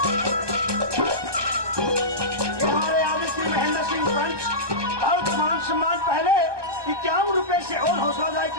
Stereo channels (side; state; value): left; late; 1.2 ms